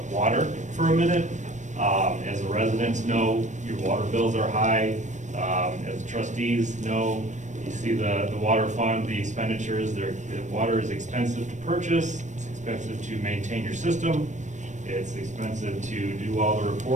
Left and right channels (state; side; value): late; left; 0.35 ms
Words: water for a minute. As the residents know, your water bills are high. As trustees know, you see the water fund, the expenditures, the water is expensive to purchase, it's expensive to maintain your system, it's expensive to do all the